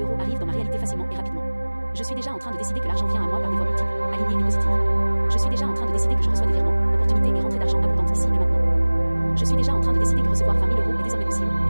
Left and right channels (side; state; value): both; inverted; correlation -1.00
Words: euros arrivent dans ma réalité facilement et rapidement. Je suis déjà en train de décider que l'argent vient à moi par des voies multiples, alignées et positives. Je suis déjà en train de décider que je reçois des virements, opportunités et rentrées d'argent abondantes ici et maintenant. Je suis déjà en train de décider que recevoir 20 000 euros est désormais possible,